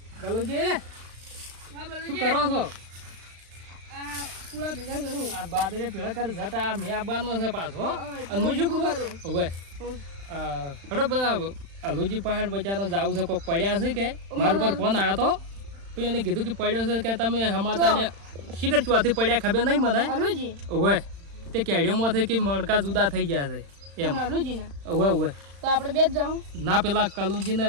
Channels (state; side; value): late; left; 35 ms